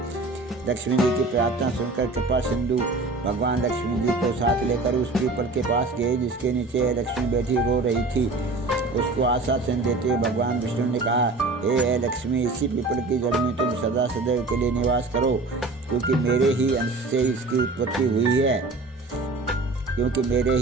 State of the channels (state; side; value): quieter; left; 3.3 dB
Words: लक्ष्मी जी की प्रार्थना सुनकर कृपा सिंधु भगवान लक्ष्मी जी को साथ लेकर उस पीपल के पास गए जिसके नीचे लक्ष्मी बैठी रो रही थी। उसको आश्वासन देते हुए भगवान विष्णु ने कहा, हे लक्ष्मी, इसी पीपल की जड़ में तुम सदा सदैव के लिए निवास करो, क्योंकि मेरे ही अंश से इसकी उत्पत्ति